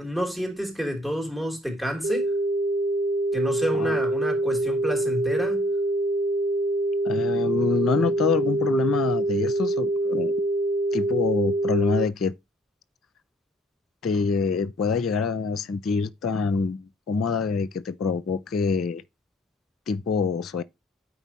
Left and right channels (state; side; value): normal; both; correlation 0.59